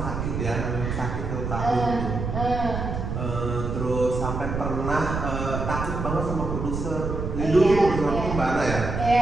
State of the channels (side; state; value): right; noise; rumble, 4 dB below the sound